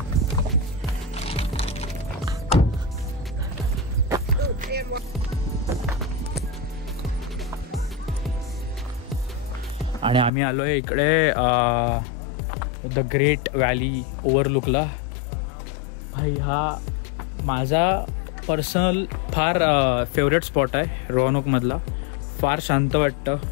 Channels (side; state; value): right; drops out; at 10.3 s